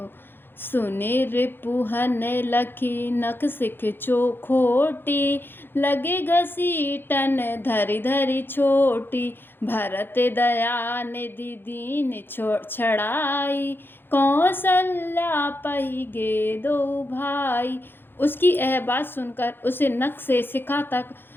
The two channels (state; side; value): late; right; 0.10 ms